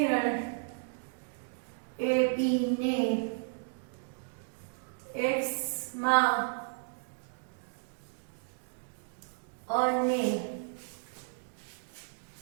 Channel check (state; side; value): silent; left; digital silence